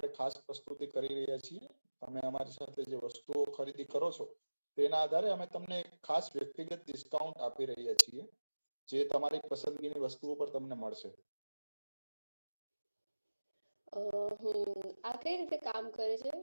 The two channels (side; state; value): both; inverted; correlation -1.00